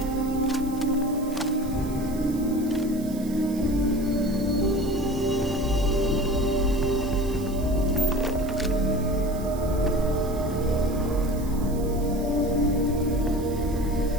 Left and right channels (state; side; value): noise; right; hiss, 18 dB below the sound